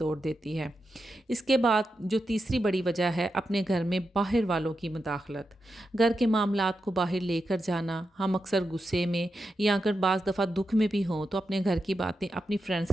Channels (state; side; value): normal; both; correlation 0.88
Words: देती है। इसके बाद जो तीसरी बड़ी वजह है, अपने घर में बाहर वालों की मुदाखलत। घर के मामलात को बाहर लेकर जाना। हम अक्सर गुस्से में या अगर बाज़ दफ़ा दुख में भी हों तो अपने घर की बातें अपनी फ्रेंड्स